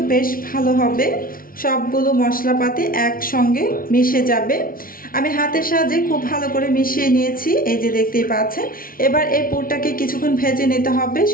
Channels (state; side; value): late; right; 0.42 ms